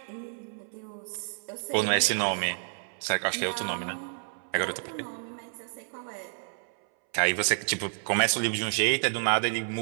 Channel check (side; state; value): left; silent; 58 dB below the other